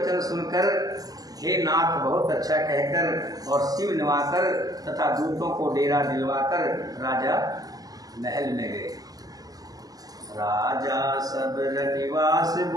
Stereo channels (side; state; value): left; late; 0.18 ms